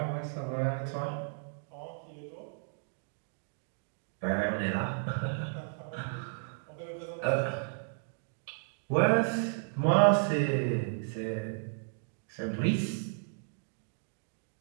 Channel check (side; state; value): left; silent; digital silence